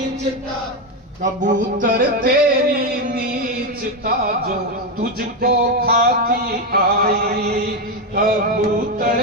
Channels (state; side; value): normal; both; correlation 0.08